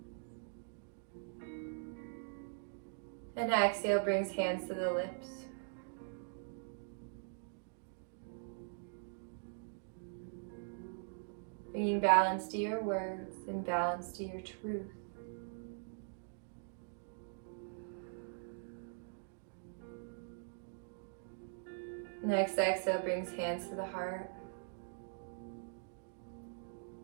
And exhale brings hands to the lips. Bringing balance to your words and balance to your truth. Next exhale brings hands to the heart.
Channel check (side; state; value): left; silent; digital silence